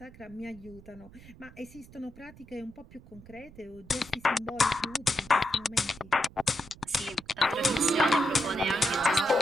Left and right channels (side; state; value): right; noise; rumble, 21 dB below the sound